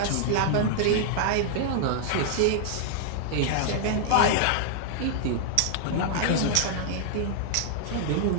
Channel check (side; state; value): both; different; correlation -0.01